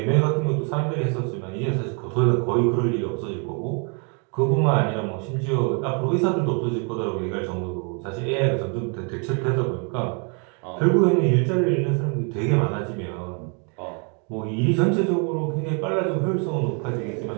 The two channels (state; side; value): quieter; left; 37.0 dB